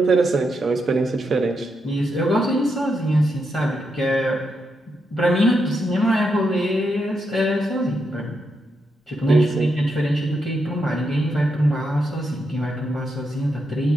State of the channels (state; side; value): normal; both; correlation 0.83